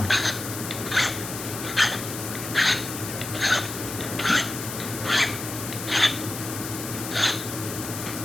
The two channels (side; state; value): left; noise; hiss, 8 dB below the sound